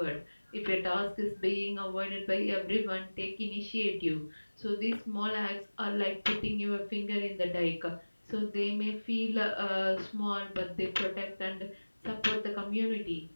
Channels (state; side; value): inverted; both; correlation -1.00